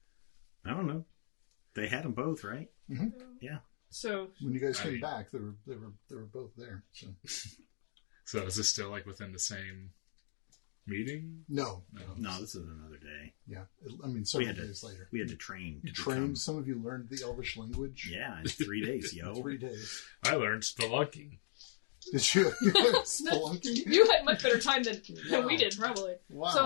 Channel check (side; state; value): right; silent; digital silence